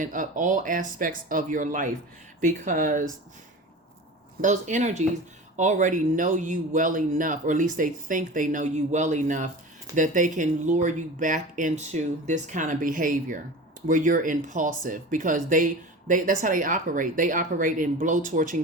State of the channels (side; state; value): both; normal; correlation 0.33